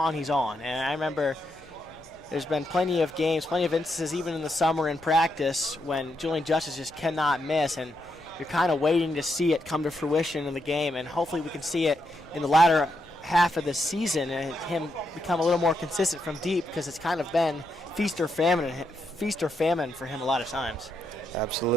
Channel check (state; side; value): noise; left; rumble, 25 dB below the sound